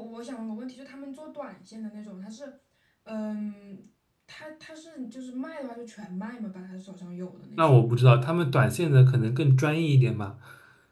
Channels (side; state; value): both; identical; correlation 1.00